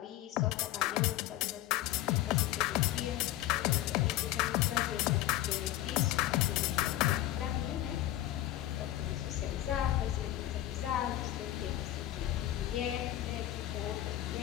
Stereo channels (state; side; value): quieter; right; 14.2 dB